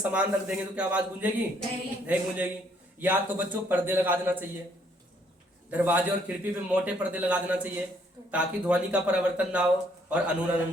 रख देंगे तो क्या आवाज गूंजेगी, नहीं गूंजेगी। या तो बच्चों पर्दे लगा देना चाहिए, दरवाजे और खिड़की पे मोटे पर्दे लगा देना चाहिए ताकि ध्वनि का परिवर्तन ना हो और अनुरणन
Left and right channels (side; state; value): both; normal; correlation 0.67